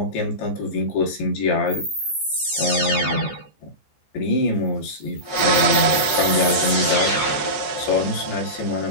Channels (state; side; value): late; right; 14 ms